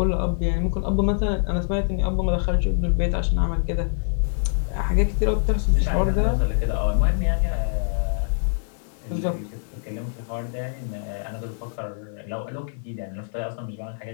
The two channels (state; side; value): silent; right; digital silence